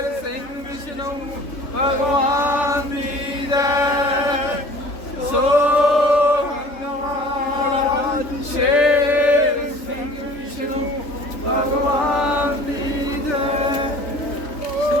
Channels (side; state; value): right; late; 3.4 ms